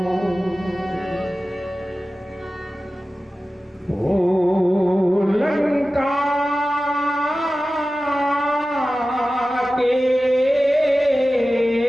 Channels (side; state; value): both; normal; correlation 0.95